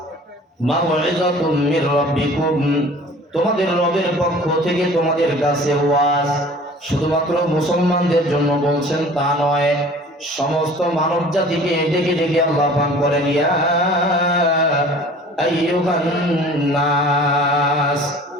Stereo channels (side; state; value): both; normal; correlation 0.46